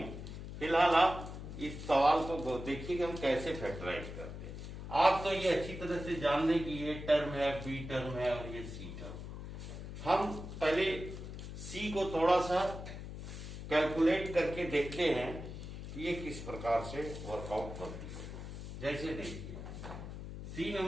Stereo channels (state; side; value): noise; left; hum, 9 dB below the sound